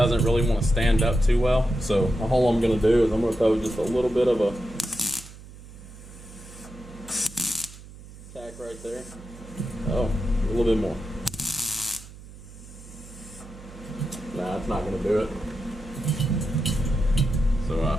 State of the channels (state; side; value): noise; right; hum, 17 dB below the sound